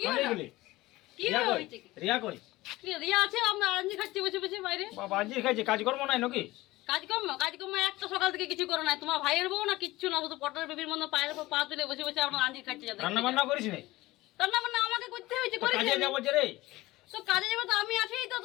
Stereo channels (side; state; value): right; quieter; 18.8 dB